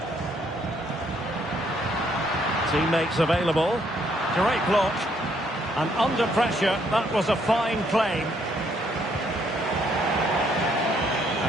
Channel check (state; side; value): normal; both; correlation 0.69